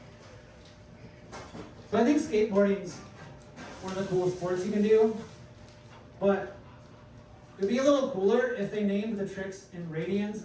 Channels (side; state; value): both; identical; correlation 1.00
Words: So I think skateboarding's one of the coolest sports you can do, but it would be a little cooler if they named the tricks in radians